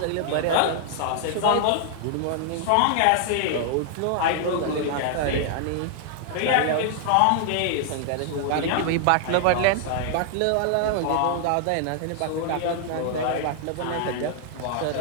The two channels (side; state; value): both; different; correlation 0.00